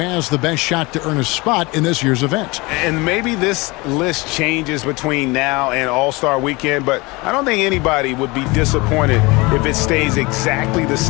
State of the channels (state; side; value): quieter; right; 24.4 dB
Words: the best shot to earn a spot in this year's event. And maybe this list changes between now and All-Star Weekend, but I don't think anybody would be disappointed if it stays exactly the